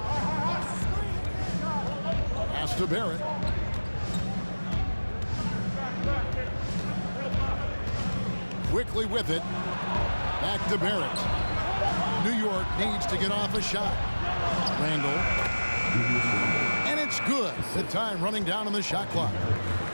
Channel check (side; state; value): both; inverted; correlation -1.00